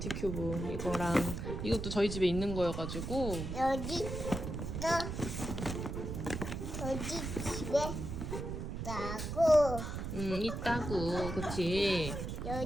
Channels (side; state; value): right; noise; rumble, 5 dB below the sound